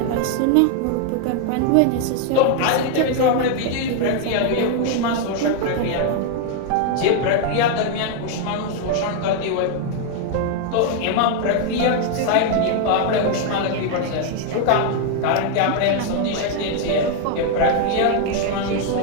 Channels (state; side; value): different; both; correlation 0.00